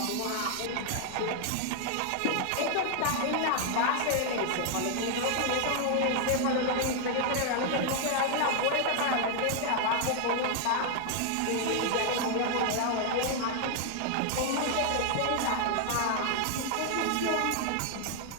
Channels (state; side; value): different; both; correlation 0.00